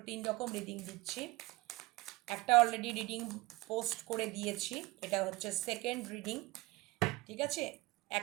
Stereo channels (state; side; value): quieter; left; 21.7 dB